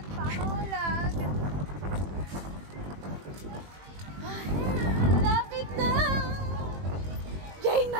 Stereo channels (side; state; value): left; late; 21 ms